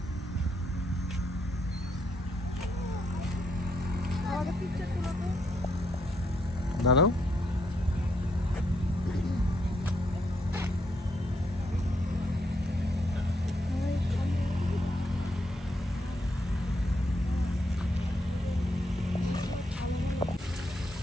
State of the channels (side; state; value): both; normal; correlation 0.76